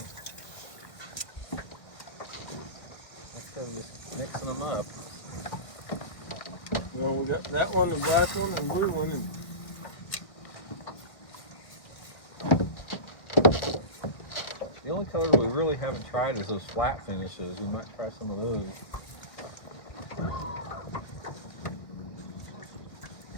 Let's go just mixing them up. Well, we got that one, the black one, and blue one. And The only color we really haven't tried is those flat finishes. We might try some of those.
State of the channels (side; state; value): right; late; 1.9 ms